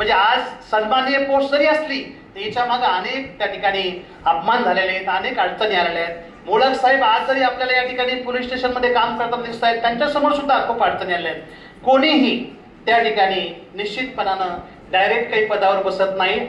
आज सन्माननीय पोस्ट जरी असली तर याच्या मागे अनेक त्या ठिकाणी अपमान झालेले आहेत, अनेक अडचणी आलेल्या आहेत. मुळक साहेब आज जरी आपल्याला या ठिकाणी पोलीस स्टेशनमध्ये काम करताना दिसत आहेत, त्यांच्यासमोर सुद्धा खूप अडचणी आल्या आहेत. कोणीही त्या ठिकाणी निश्चितपणानं डायरेक्ट काही पदावर बसत नाही.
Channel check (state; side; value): identical; both; correlation 1.00